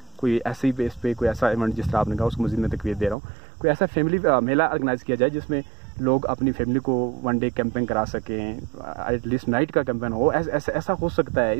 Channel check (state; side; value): drops out; left; at 3.2 s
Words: कोई ऐसी बेस पे कोई ऐसा इवेंट जिस तरह आपने कहा उसको मज़ीद मैं तकवीत दे रहा हूँ, कोई ऐसा फैमिली मेला ऑर्गेनाइज किया जाए जिसमें लोग अपनी फैमिली को वन डे कैंपिंग करा सकें, एटलीस्ट नाइट का कैंपेन हो। ऐसा हो सकता है,